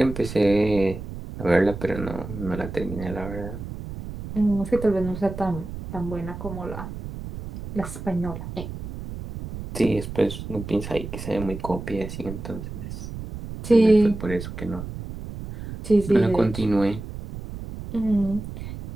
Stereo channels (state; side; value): noise; right; rumble, 9 dB below the sound